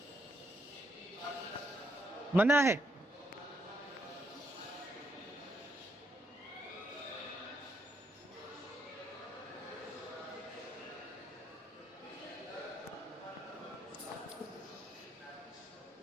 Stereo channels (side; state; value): both; normal; correlation 0.74